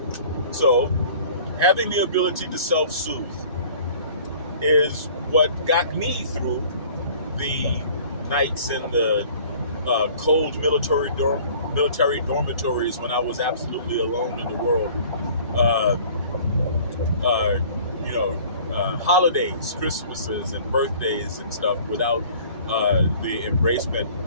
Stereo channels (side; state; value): both; inverted; correlation -0.50